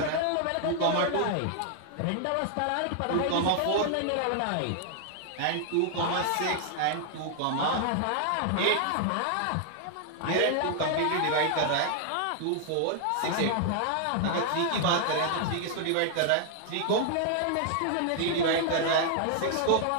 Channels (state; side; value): different; both; correlation 0.00